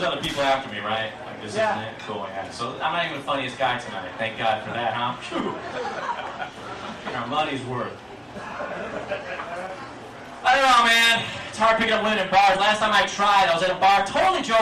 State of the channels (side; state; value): both; identical; correlation 1.00